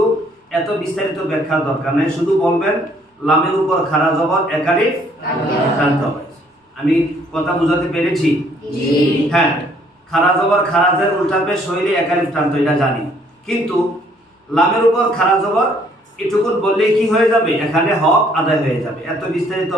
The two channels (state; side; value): normal; both; correlation 0.63